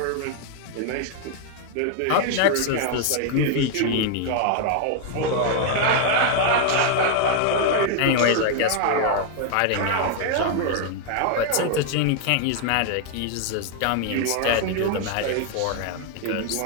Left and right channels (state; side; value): different; both; correlation 0.00